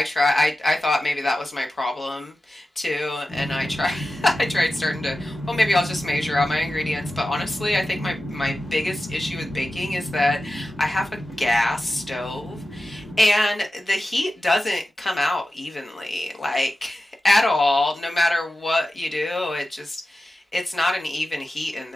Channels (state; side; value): normal; both; correlation 0.94